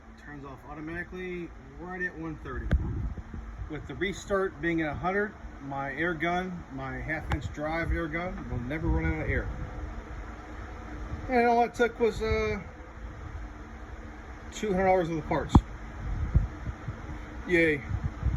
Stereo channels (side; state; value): both; identical; correlation 1.00